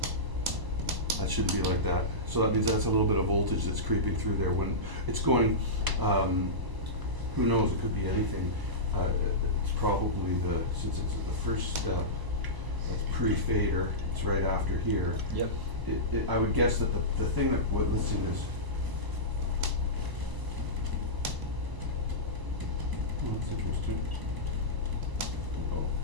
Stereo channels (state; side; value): late; left; 1.0 ms